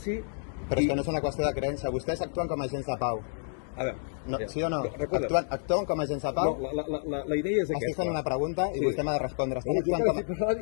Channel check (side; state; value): right; silent; digital silence